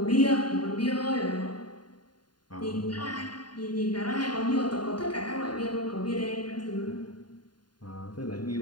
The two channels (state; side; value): late; right; 0.70 ms